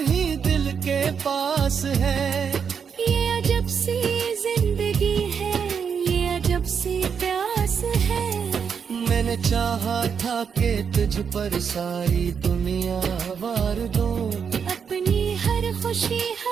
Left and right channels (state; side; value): quieter; left; 6.8 dB